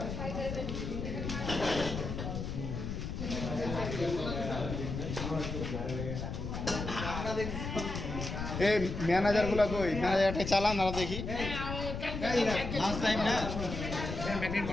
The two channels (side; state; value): left; noise; rumble, 5 dB below the sound